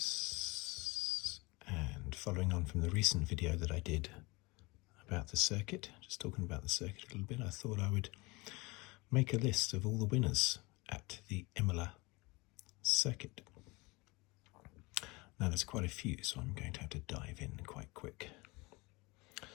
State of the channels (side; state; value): right; quieter; 24.8 dB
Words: and following on from the recent video that I did about the circuit, just talking about the circuit a little bit, I thought I would make a list of all the winners at the Imola Circuit. Now there's quite a few, so I'm going to have to dive in quite quick.